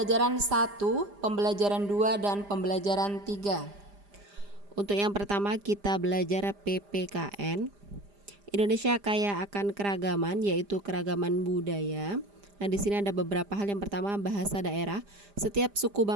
1, pembelajaran 2 dan pembelajaran 3. Untuk yang pertama kita belajar PPKN. Indonesia kaya akan keragaman, yaitu keragaman budaya. Nah, di sini ada beberapa hal. Yang pertama, bahasa daerah. Setiap suku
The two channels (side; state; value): left; late; 5.0 ms